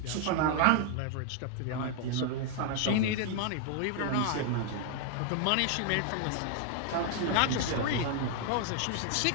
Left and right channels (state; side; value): different; both; correlation 0.00